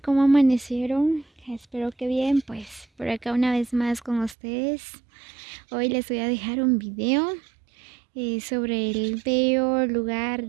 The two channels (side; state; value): left; drops out; at 4.4 s